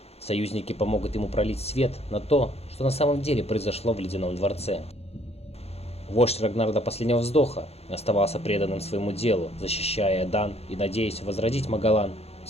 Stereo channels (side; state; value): right; late; 0.30 ms